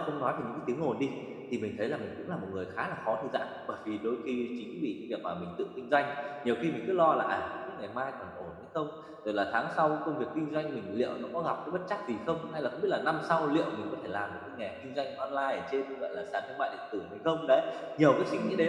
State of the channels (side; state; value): both; identical; correlation 1.00